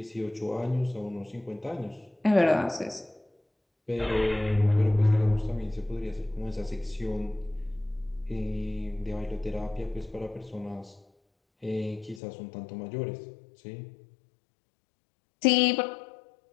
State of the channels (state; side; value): drops out; right; at 12.2 s